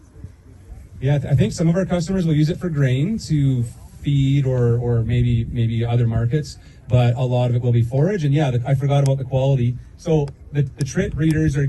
Yeah, I think some of our customers will use it for grain to feed or maybe other markets, but a lot of it will be forage. And yeah, I forgot about the quality. So the trit breeders are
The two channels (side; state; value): both; identical; correlation 1.00